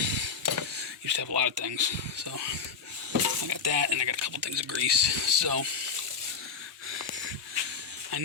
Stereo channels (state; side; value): quieter; right; 5.9 dB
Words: Used to have a lot of things. So I got that, and I got a couple things of grease. So I